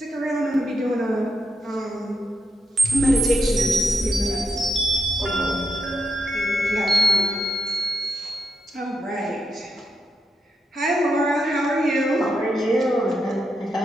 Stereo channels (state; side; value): normal; both; correlation 0.83